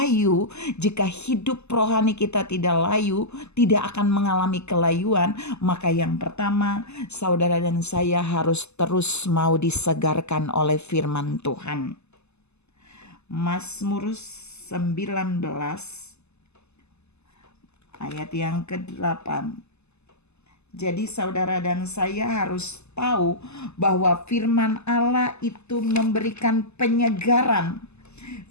jika hidup rohani kita tidak layu, tidak akan mengalami kelayuan, maka yang pertama, saudara dan saya harus terus mau disegarkan oleh firman Tuhan. Mazmur 19 ayat yang ke-8. Jadi saudara dan saya harus tahu bahwa firman Allah itu memberikan penyegaran.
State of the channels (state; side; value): late; right; 0.80 ms